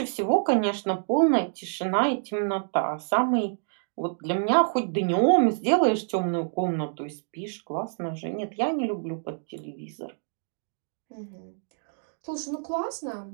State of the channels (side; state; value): left; silent; digital silence